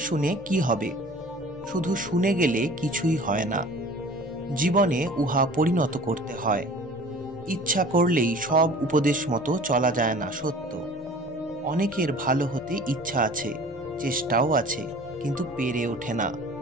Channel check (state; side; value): normal; both; correlation 0.45